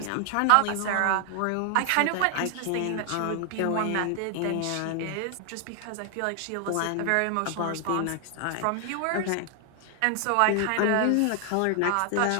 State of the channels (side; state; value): both; different; correlation 0.00